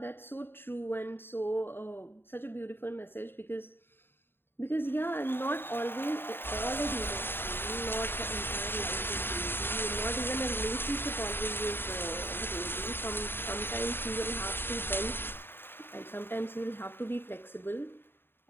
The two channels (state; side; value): late; right; 0.10 ms